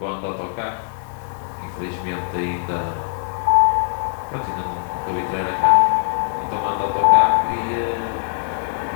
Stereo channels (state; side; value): silent; right; digital silence